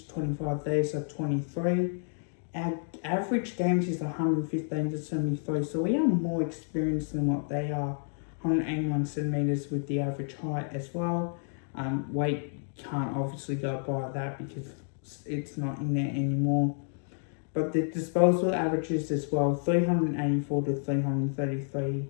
25, theirs are 23. Our average games is 115 to 73, so we are more experienced than what they are. 181 centimetres with the average height as well. Weight can't obviously go by that because it's not in there anymore. But the disposal averages as well, 384 to 333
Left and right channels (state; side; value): silent; right; 58 dB below the other